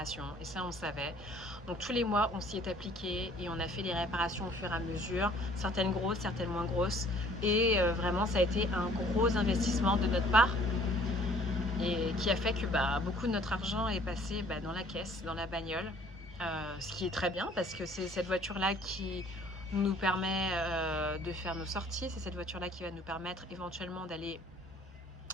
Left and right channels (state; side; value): normal; both; correlation 0.56